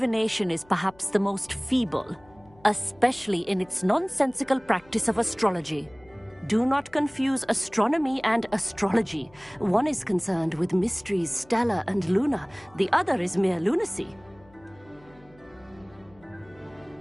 is perhaps the most feeble, especially in its nonsensical practice of astrology. Do not confuse astronomy and astrology. One is concerned with mysteries stellar and lunar, the other is mere lunacy.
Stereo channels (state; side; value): noise; left; hum, 28 dB below the sound